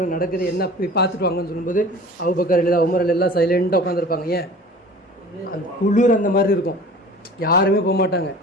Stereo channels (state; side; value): normal; both; correlation 0.42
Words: நடக்குது, என்ன போய் பார்த்துட்டு வாங்கன்னு சொல்லும்போது அபூபக்கர் ரலியல்லாஹு உமர் எல்லாம் சைலண்டாக உட்காந்துருப்பாங்க. ஏன், அந்த குளிர் அந்த மாதிரி இருக்கும், யாருமே போக மாட்டாங்க.